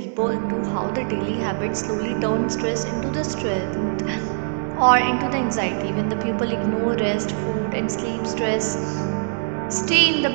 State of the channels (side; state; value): left; silent; digital silence